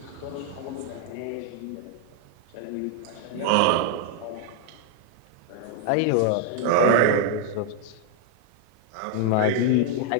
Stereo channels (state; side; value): different; both; correlation 0.00